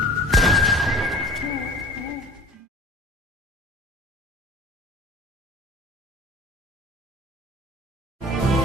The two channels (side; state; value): both; normal; correlation 0.44